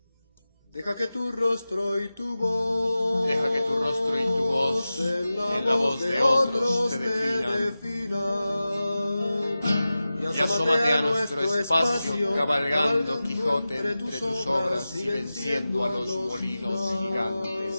Deja que tu rostro y tu voz, en la voz de otros te definan. Y asómate a nuestro espacio, cabalgando Quijote entre tus obras y venciendo a los molinos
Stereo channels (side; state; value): both; inverted; correlation -0.95